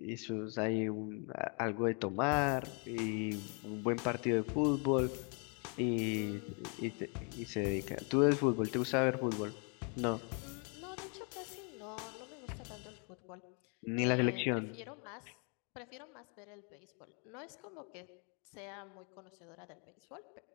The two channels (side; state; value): right; quieter; 37.0 dB